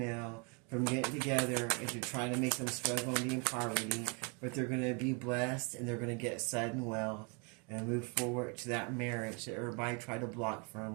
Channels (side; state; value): left; quieter; 34.1 dB